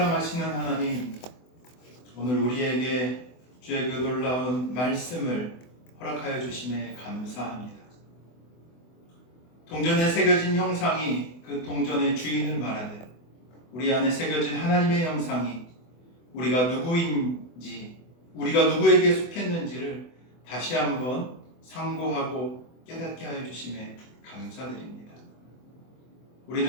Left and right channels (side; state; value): right; late; 24 ms